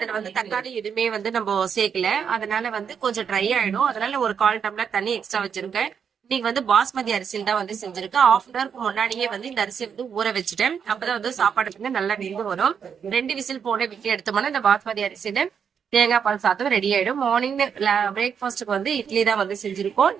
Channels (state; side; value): quieter; left; 7.2 dB